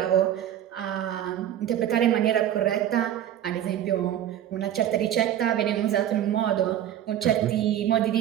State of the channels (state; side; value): quieter; left; 11.2 dB